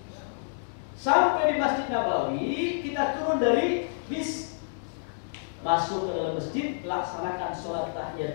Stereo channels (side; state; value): right; silent; digital silence